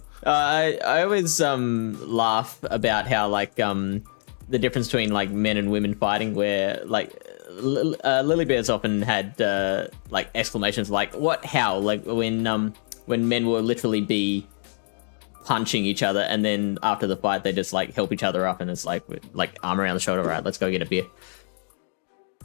I always laugh about how like the difference between like men and women fighting, where like Lily Bear's often had like exclamations like "what? How?" Like when men will literally be punching each other, and then after the fight they just like help each other up, and it's like arm around the shoulder, right? Let's go get a beer.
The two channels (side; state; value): right; silent; digital silence